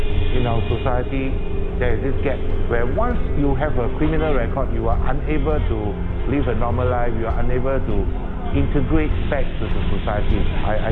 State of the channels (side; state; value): both; identical; correlation 1.00